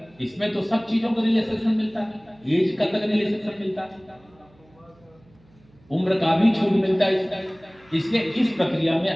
इसमें तो सब चीजों का रिलैक्सेशन मिलता है, एज का तक रिलैक्सेशन मिलता है, उम्र का भी छूट मिलता है। इसलिए इस प्रक्रिया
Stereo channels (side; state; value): right; noise; hum, 30 dB below the sound